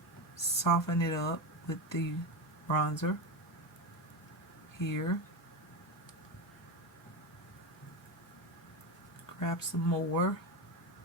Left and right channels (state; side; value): normal; both; correlation 0.17